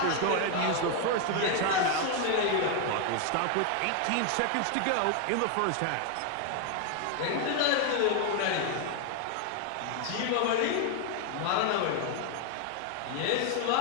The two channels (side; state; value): both; different; correlation 0.00